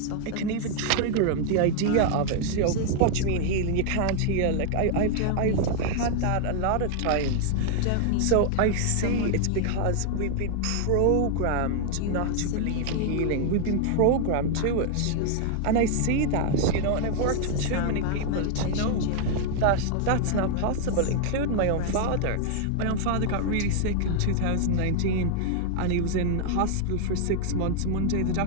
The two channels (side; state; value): both; different; correlation 0.00